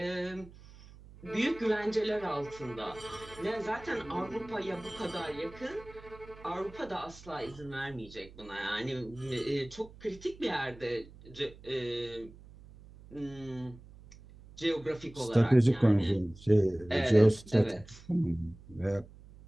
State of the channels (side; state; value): right; noise; hum, 20 dB below the sound